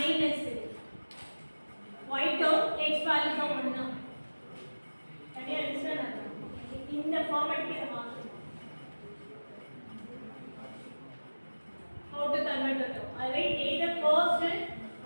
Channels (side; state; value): both; inverted; correlation -1.00